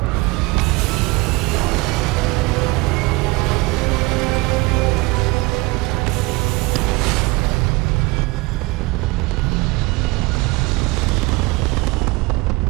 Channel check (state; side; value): quieter; left; 23.8 dB